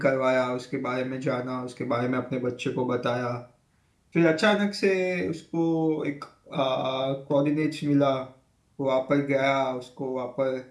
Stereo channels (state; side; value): identical; both; correlation 1.00